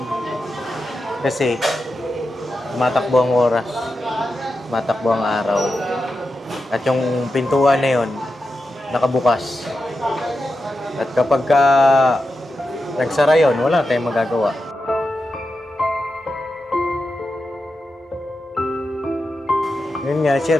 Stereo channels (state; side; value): normal; both; correlation 0.89